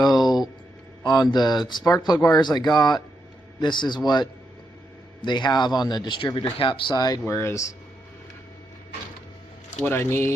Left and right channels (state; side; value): normal; both; correlation 0.82